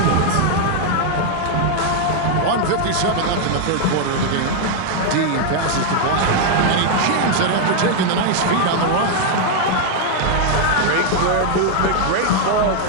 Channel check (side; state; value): both; different; correlation 0.00